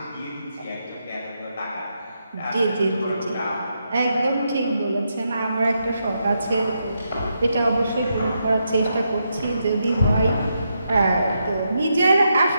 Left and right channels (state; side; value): inverted; both; correlation -0.82